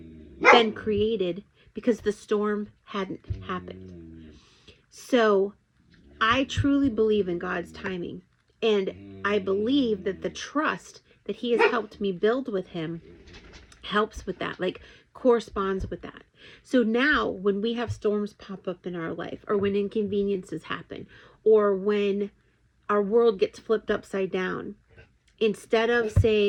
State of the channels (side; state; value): both; identical; correlation 1.00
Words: been created because the storm hadn't happened. So I truly believe in God's timing. And I believe that the trust that he has helped me build with him helps with that, like corresponds with that. So now when we have storms pop up in our life, or when inconveniences happen, or when our world gets flipped upside down, instead of